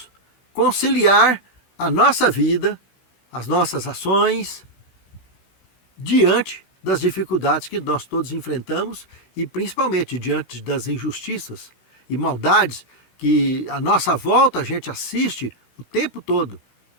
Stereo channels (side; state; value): right; late; 16 ms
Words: conciliar a nossa vida, as nossas ações, diante das dificuldades que nós todos enfrentamos e principalmente diante das injustiças e maldades que à nossa volta a gente assiste o tempo todo.